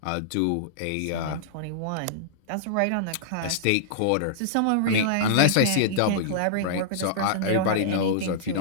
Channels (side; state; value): both; different; correlation -0.02